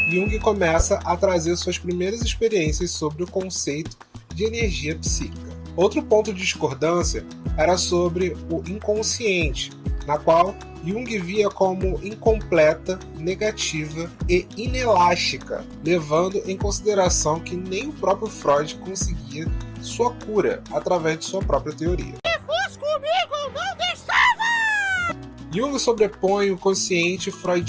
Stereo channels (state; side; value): identical; both; correlation 1.00